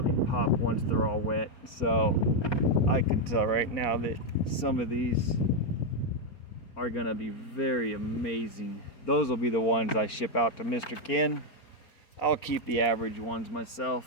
pop once they're all wet. So I can tell right now that some of these are gonna be very amazing. Those will be the ones I ship out to Mr. Ken. I'll keep the average ones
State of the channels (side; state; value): right; late; 4.4 ms